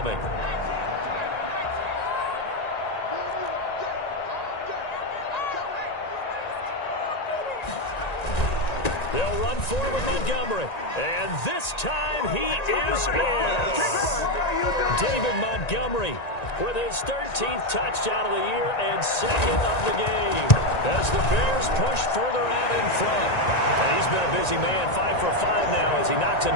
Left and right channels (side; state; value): right; late; 1.9 ms